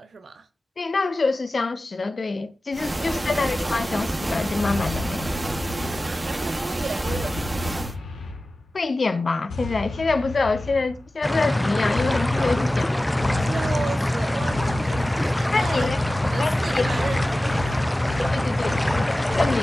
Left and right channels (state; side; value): normal; both; correlation 0.96